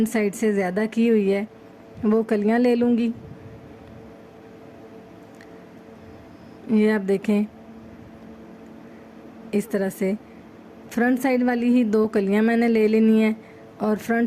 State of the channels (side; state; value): both; identical; correlation 1.00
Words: साइड से ज़्यादा की हुई है, वो कलियाँ ले लूँगी। ये आप देखें इस तरह से फ्रंट साइड वाली ही 2 कलियाँ मैंने ले लेनी है और